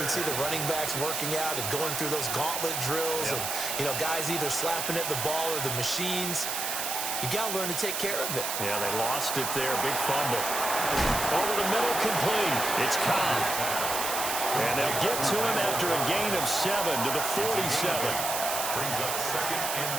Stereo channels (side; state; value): right; noise; hiss, 2 dB below the sound